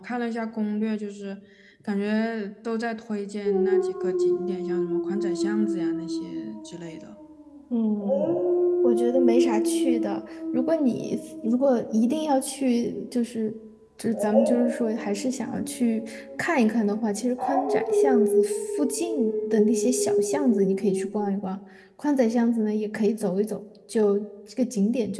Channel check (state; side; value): identical; both; correlation 1.00